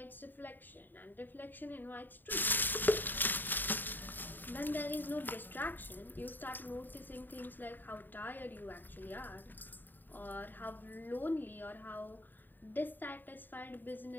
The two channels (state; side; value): late; right; 0.091 ms